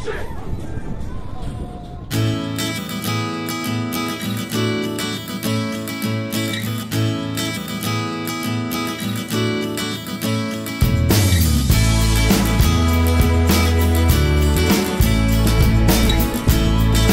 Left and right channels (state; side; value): identical; both; correlation 1.00